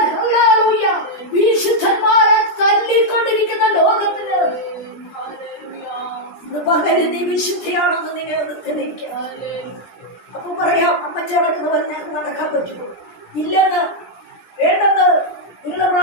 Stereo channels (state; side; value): late; right; 17 ms